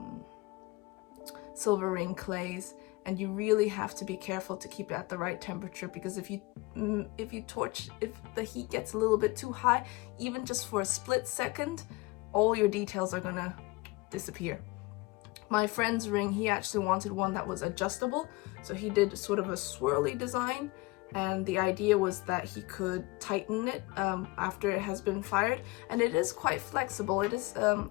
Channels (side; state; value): right; quieter; 23.2 dB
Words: silver ring clays, and you really have to be careful to keep it at the right temperature, because if the heat gets a little bit too high, even just for a split second, all your details are gonna disappear. My friend's ring, he actually wanted one that was adjustable, so he did sort of a swirly design, and the idea was that he could tighten it after it has been fired, and it is quite flexible. It is a